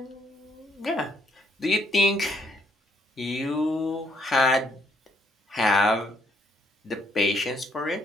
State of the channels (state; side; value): normal; both; correlation 0.71